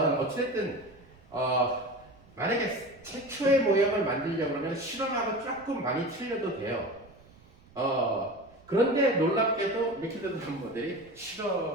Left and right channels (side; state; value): right; noise; rumble, 26 dB below the sound